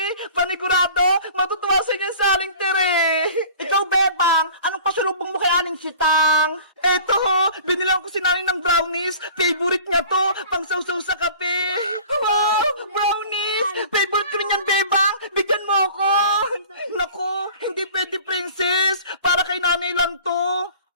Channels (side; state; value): both; inverted; correlation -0.45